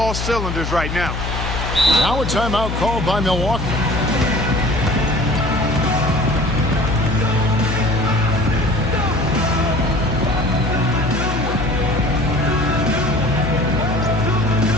cylinders right now. Now a timeout called by Milwaukee.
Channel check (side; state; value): left; noise; hum, 4 dB below the sound